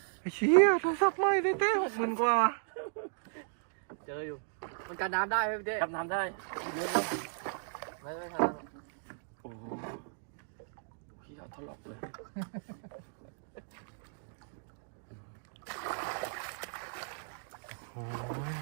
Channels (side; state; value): left; silent; digital silence